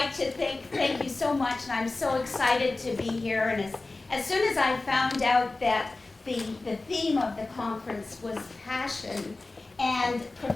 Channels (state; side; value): quieter; right; 3.3 dB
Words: to thank you so much, and I'm so excited to be here. And as soon as I found out that the theme of the conference was passion and